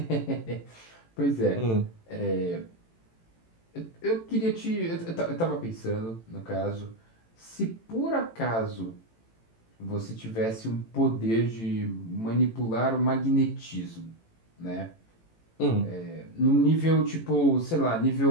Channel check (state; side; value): late; right; 18 ms